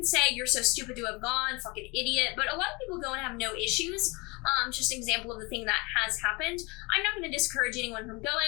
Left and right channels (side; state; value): right; quieter; 26.7 dB